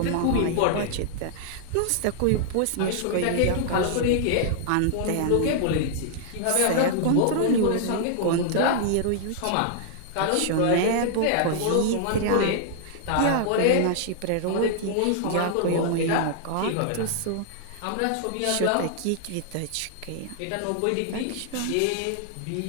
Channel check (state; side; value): different; both; correlation -0.01